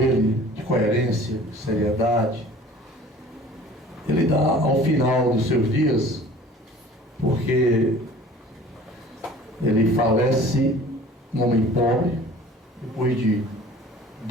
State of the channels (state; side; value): normal; both; correlation 0.47